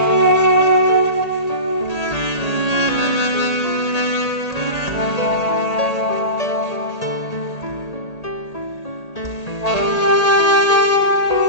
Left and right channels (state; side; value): late; right; 1.8 ms